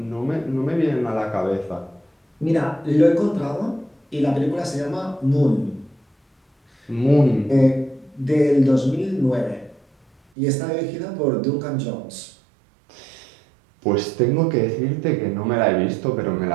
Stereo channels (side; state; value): left; drops out; at 10.2 s